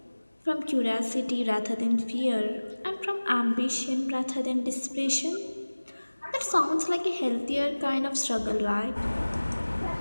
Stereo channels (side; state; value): both; inverted; correlation -1.00